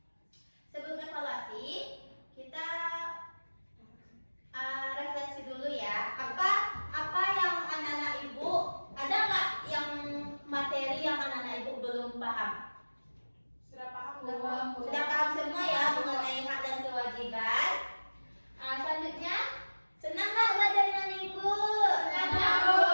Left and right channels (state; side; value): inverted; both; correlation -1.00